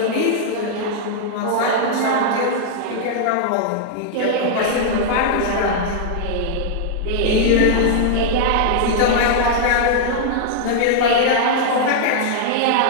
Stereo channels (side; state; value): both; different; correlation -0.01